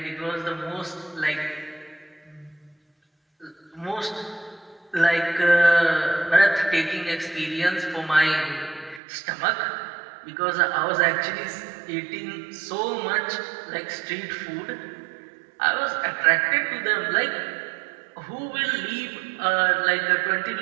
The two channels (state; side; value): drops out; left; at 9.0 s